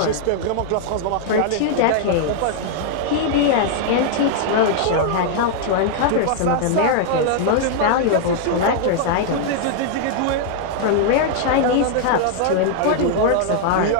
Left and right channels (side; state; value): both; different; correlation 0.00